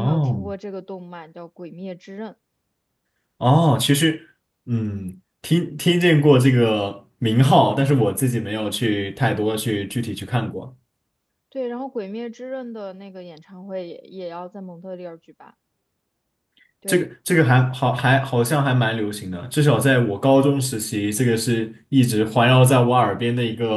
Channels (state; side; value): identical; both; correlation 1.00